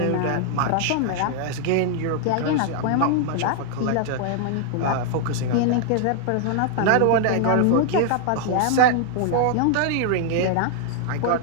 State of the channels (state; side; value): different; both; correlation 0.00